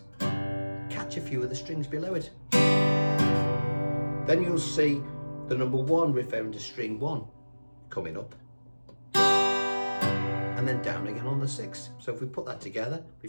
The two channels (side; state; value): both; inverted; correlation -1.00